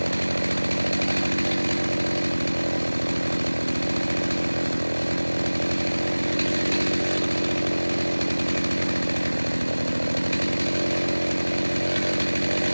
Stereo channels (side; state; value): both; inverted; correlation -1.00